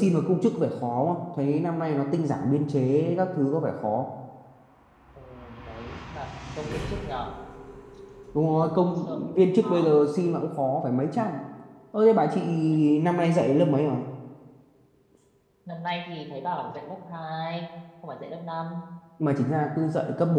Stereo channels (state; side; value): identical; both; correlation 1.00